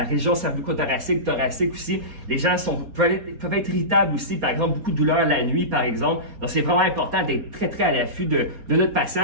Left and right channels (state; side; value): late; left; 4.2 ms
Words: région cervico-thoracique, thoracique aussi. Les gens peuvent être irritables aussi, par exemple, beaucoup de douleurs la nuit, par exemple. Donc, c'est vraiment important d'être très à l'affût de notre